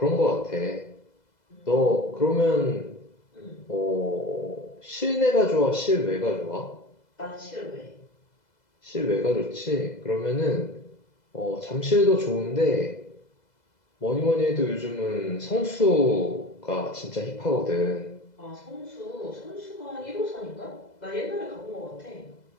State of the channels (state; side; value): late; right; 2.0 ms